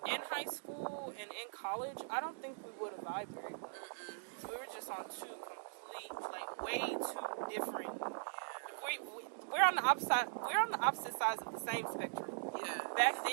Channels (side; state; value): left; silent; digital silence